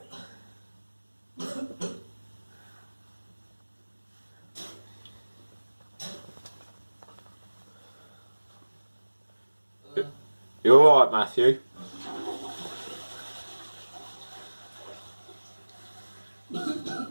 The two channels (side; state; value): both; inverted; correlation -1.00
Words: You alright, Matthew?